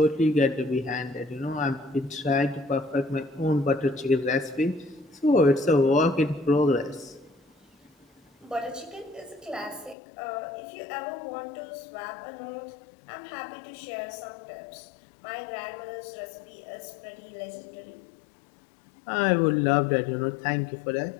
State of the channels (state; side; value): drops out; right; at 10.0 s